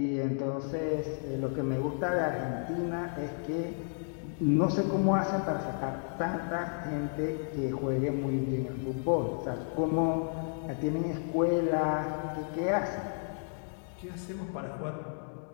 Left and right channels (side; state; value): right; silent; digital silence